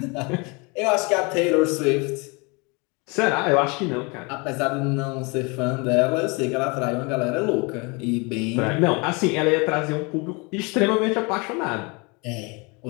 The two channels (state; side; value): quieter; right; 29.4 dB